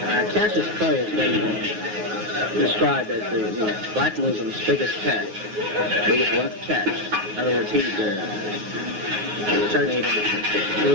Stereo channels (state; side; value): late; left; 9.4 ms